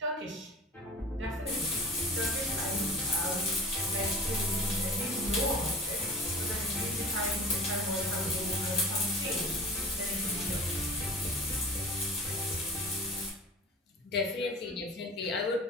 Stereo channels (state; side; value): normal; both; correlation 0.38